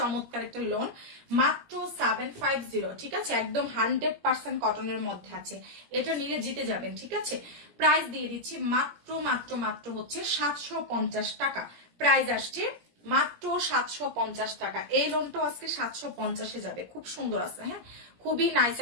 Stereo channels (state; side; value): late; left; 17 ms